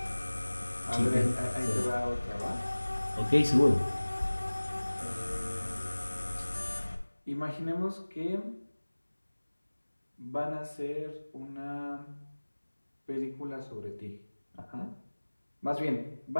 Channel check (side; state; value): both; inverted; correlation -1.00